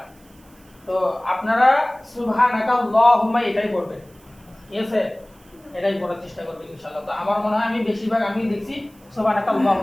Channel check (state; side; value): noise; right; hiss, 29 dB below the sound